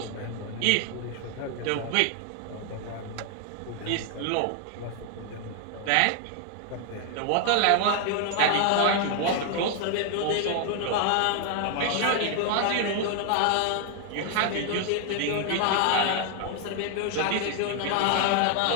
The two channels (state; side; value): different; both; correlation 0.00